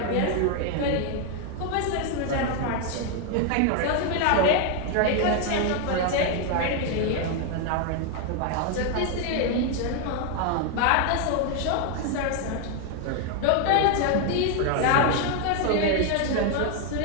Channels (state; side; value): different; both; correlation 0.01